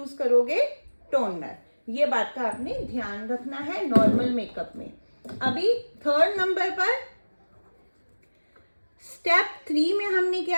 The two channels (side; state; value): both; inverted; correlation -1.00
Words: करोगे टोनर। ये बात का आपने ध्यान रखना है नॉर्मल मेकअप में। अभी थर्ड नंबर पर स्टेप 3 में हमने